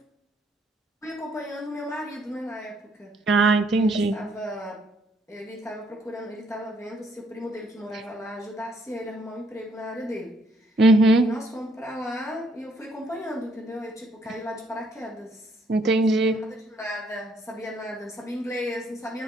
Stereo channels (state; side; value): normal; both; correlation 0.68